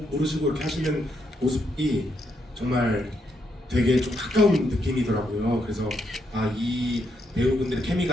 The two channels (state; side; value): normal; both; correlation 0.78